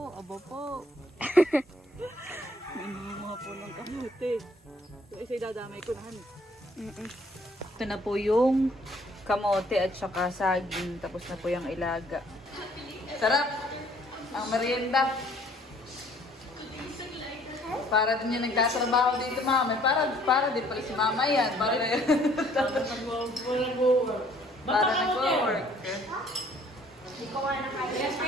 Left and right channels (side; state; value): both; normal; correlation 0.60